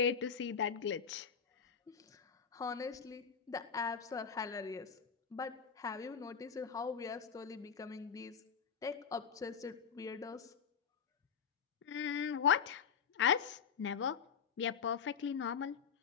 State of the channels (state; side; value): quieter; right; 6.8 dB